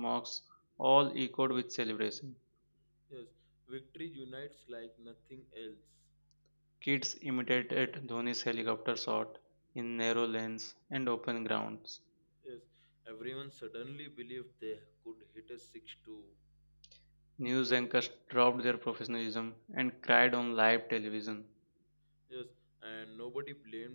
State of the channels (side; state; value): both; inverted; correlation -1.00